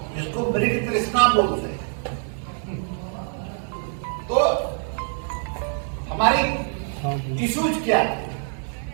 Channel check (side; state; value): left; silent; 62 dB below the other